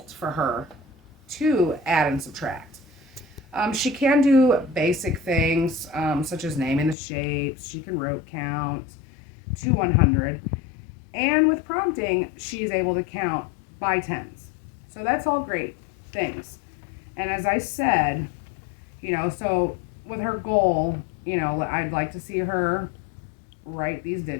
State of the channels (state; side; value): drops out; right; at 7.0 s